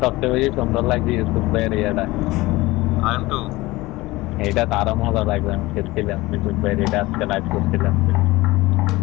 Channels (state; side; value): quieter; right; 20.2 dB